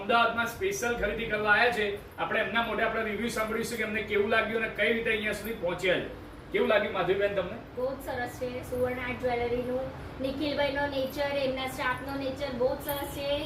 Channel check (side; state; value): both; identical; correlation 1.00